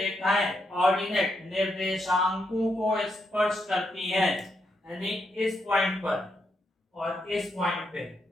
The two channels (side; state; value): both; normal; correlation 0.81